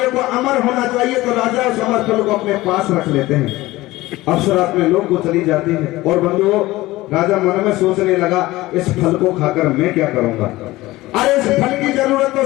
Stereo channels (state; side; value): quieter; right; 18.4 dB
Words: को अमर होना चाहिए, तो राजा उस अमरफल को अपने पास रख लेते हैं। अप्सरा अपने लोग को चली जाती है, और बंधुओं राजा मन में सोचने लगा इस फल को खाकर मैं क्या करूंगा। अरे इस फल की जरूरत तो